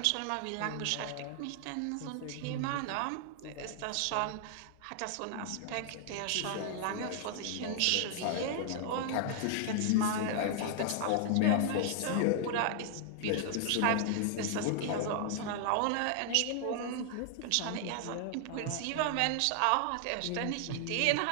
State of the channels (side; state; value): both; different; correlation 0.00